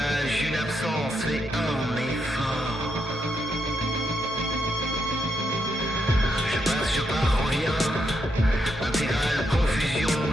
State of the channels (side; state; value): both; normal; correlation 0.81